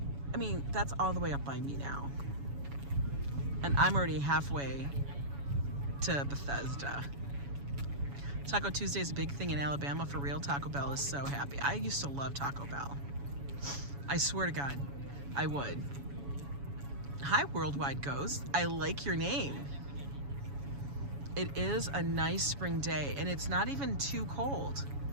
I mean, that's all the way up by me now. And I'm already halfway to Bethesda. Taco Tuesday is a big thing in Alabama for real. Taco Bell is so happy. I used to love Taco Bell. I swear to God, I would. Hi, Worldwide Ghost. I like your name. It is a nice spring day, and it's not even too cold.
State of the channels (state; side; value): late; left; 7.1 ms